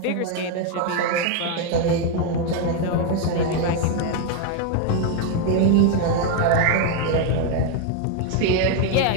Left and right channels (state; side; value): different; both; correlation 0.01